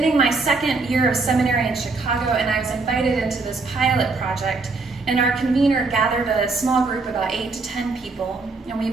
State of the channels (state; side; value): quieter; left; 3.8 dB